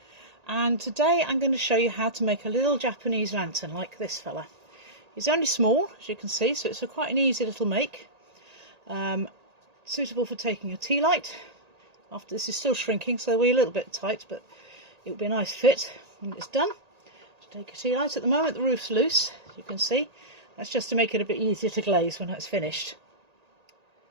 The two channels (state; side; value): late; left; 1.8 ms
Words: and today I'm going to show you how to make a little Japanese lantern like this fella. He's only small, as you can see, so it's quite an easy little make. Suitable for taking a tea light. After this is still shrinking, so we're a little bit tight, but it will be a nice fit when it's done. To take a tea light. At the moment the roof's loose, as you can see. That's just to make it a bit easier to glaze when it's finished.